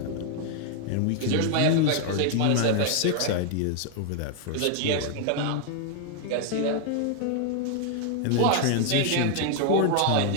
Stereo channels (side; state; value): both; different; correlation 0.00